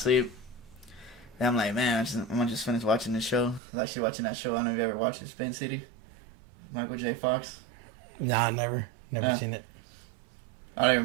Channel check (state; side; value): drops out; left; at 3.6 s